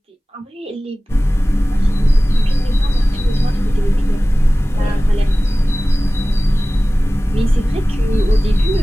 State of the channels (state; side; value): normal; both; correlation 0.98